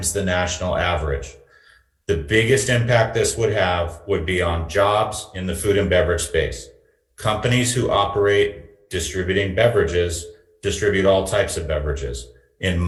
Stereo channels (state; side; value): identical; both; correlation 1.00